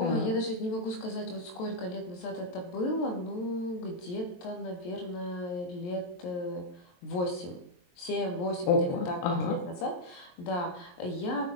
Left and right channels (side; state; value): right; late; 22 ms